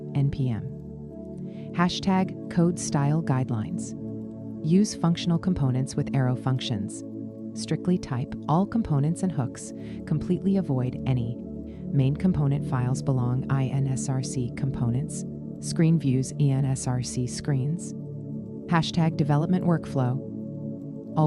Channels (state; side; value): identical; both; correlation 1.00